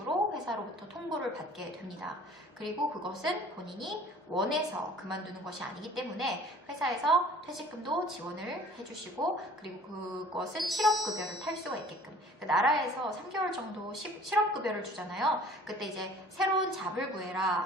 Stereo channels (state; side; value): normal; both; correlation 0.49